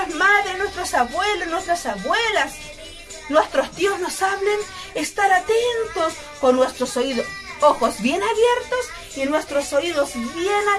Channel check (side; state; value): both; identical; correlation 1.00